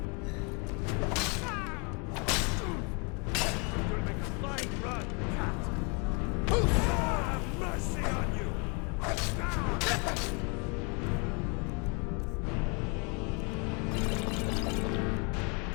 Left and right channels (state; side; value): quieter; right; 33.0 dB